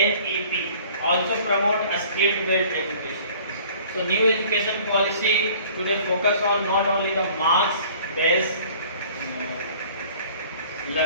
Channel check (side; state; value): both; inverted; correlation -0.51